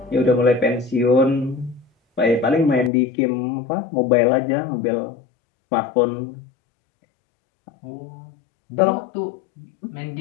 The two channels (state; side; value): drops out; right; at 2.9 s